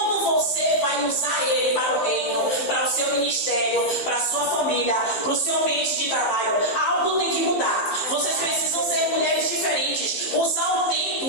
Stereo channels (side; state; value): right; late; 15 ms